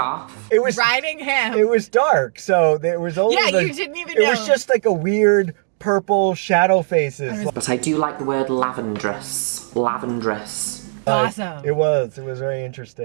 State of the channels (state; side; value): silent; left; digital silence